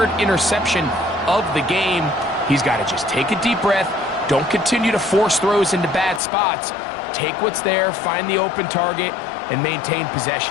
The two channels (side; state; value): right; drops out; at 6.2 s